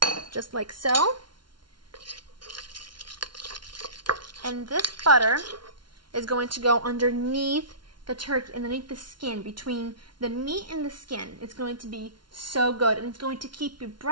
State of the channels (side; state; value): left; late; 0.72 ms